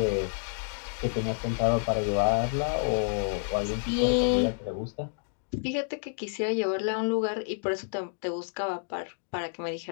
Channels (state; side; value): silent; right; digital silence